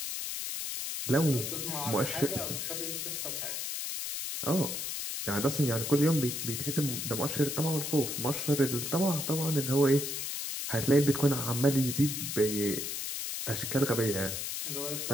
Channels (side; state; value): left; noise; hiss, 4 dB below the sound